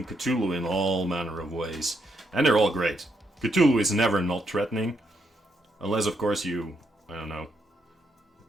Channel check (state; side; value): normal; both; correlation 0.78